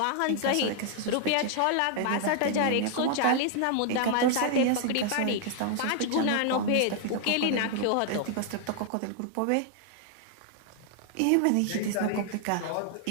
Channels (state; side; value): different; both; correlation 0.00